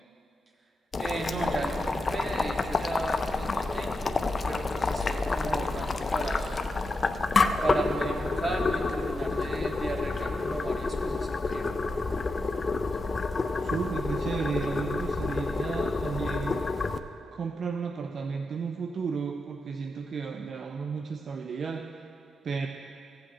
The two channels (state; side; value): normal; both; correlation 0.87